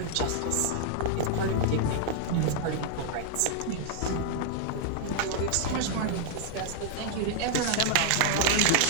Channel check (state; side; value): different; both; correlation -0.01